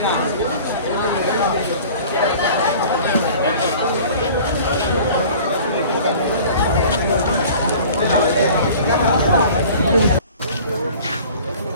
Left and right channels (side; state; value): both; inverted; correlation -0.45